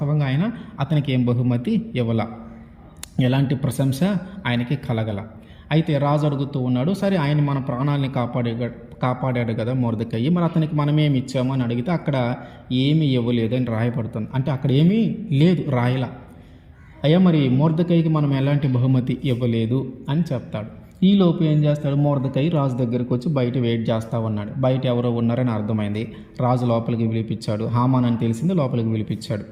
అతనికి ఏం బహుమతి ఇవ్వాల, ఎలాంటి ప్రశంస ఆయనకి కలగల. అయితే రాజు అడుగుతూ ఉన్నాడు, సరే ఆయన మన ప్రాణాలని కాపాడాడు కదా మొర్దెకై, మరి అతనికి మనమేమి ఇచ్చాము అని అడిగితే అక్కడ ఏమీ ఇవ్వలేదు అని రాయబడుతుంది. అంటే అక్కడ ఏమీ లేదు, రాయలా. అయ్యా మరి మొర్దెకైకి మనం ఎలాంటి బహుమతి ఇవ్వలేదు అని చెప్తాడు. ఈలోపు ఏం చేస్తాడు, మొర్దెకై రాజు దగ్గరికి వచ్చి బయట వెయిట్ చేస్తూ ఉన్నాడు. బయట ఎవరో ఉన్నారని అర్థమైంది, రాజు లోపలికి పిలిపించాడు. హామాన్ అని తెలిసింది, లోపలికి పిలిపించాడు.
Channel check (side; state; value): both; identical; correlation 1.00